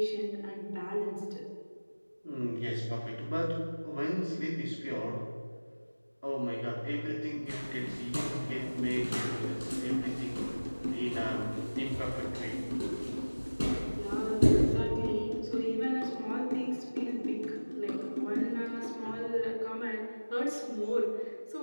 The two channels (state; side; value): inverted; both; correlation -1.00